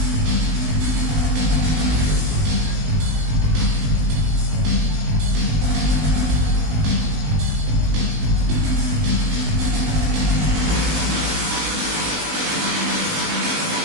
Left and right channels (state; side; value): late; left; 19 ms